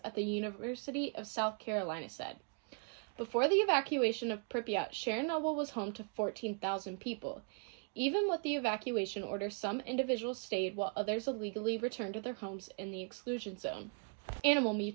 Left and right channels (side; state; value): left; quieter; 39.5 dB